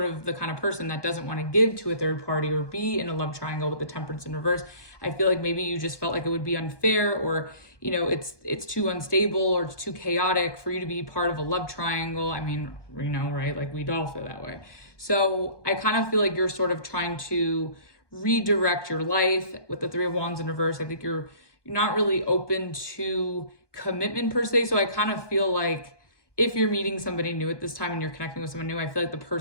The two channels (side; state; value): right; late; 1.2 ms